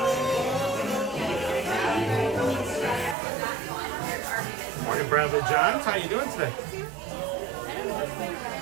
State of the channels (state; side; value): drops out; left; at 3.2 s